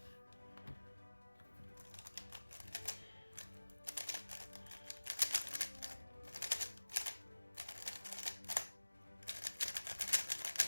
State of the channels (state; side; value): inverted; both; correlation -1.00